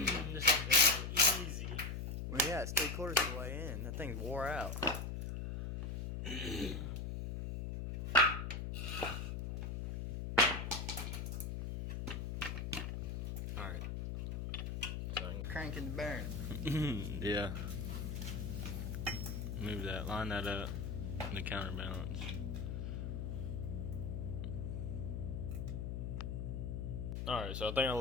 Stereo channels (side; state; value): left; noise; hum, 3 dB below the sound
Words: This is gonna go easy. Well, yeah, it's 3/4 of the way in. That thing's wore out. Alright. cranking the bearing. Yeah. Move that. Line that up. The counterbalance. Alright, so I think I